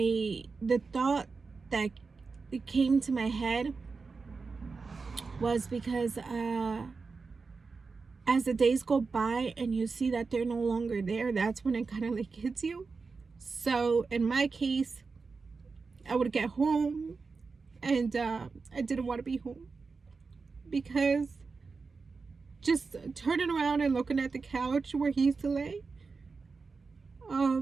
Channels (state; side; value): quieter; left; 4.5 dB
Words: The thought that it came to my head was because as the days go by and you see that they're no longer there, that's when it kind of like hits you. So in my case, I would get home and I didn't want to be home, because just turning around and looking at the couch where he used to lay,